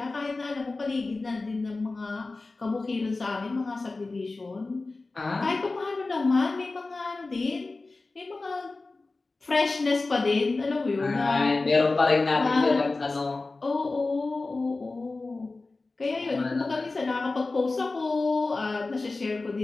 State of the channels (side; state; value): right; quieter; 3.5 dB